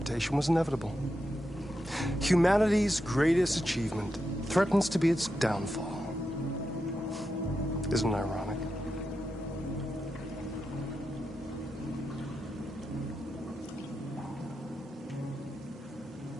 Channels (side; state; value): both; normal; correlation 0.87